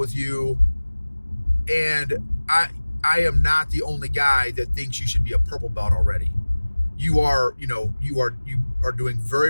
you. And I am not the only guy that thinks you should be a purple belt already. You are doing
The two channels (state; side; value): inverted; both; correlation -1.00